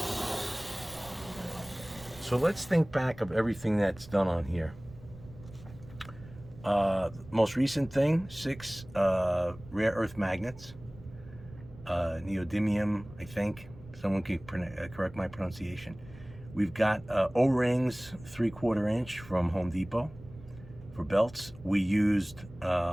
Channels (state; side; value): noise; right; rumble, 18 dB below the sound